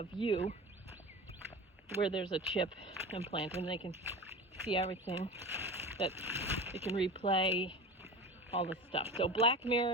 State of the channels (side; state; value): both; normal; correlation 0.31